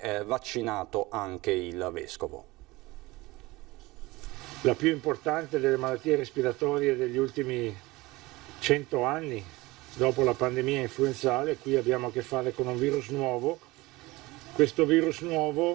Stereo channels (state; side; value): quieter; left; 21.1 dB